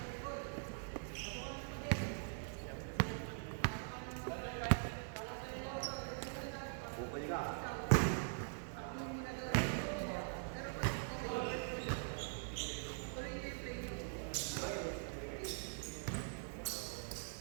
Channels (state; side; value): silent; left; digital silence